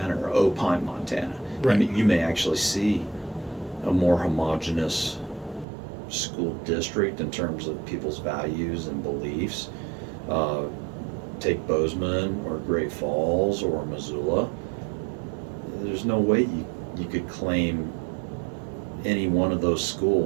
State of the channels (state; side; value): drops out; left; at 5.7 s